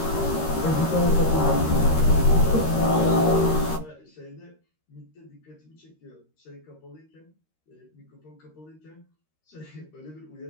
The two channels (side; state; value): right; late; 13 ms